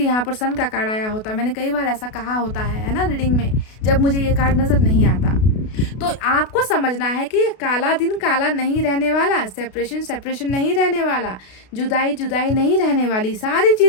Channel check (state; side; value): late; right; 32 ms